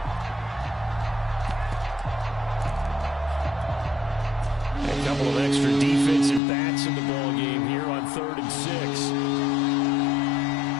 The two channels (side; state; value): right; drops out; at 6.4 s